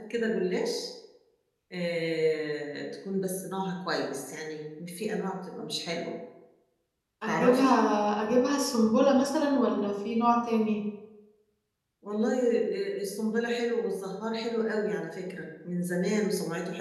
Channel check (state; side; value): identical; both; correlation 1.00